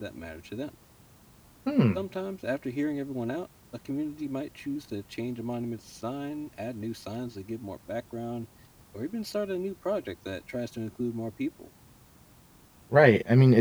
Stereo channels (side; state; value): both; identical; correlation 1.00